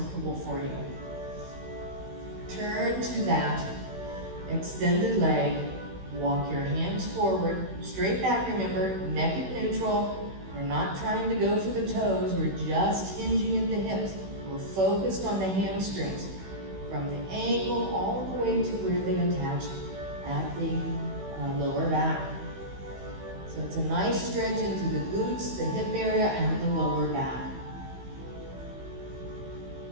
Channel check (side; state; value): left; late; 16 ms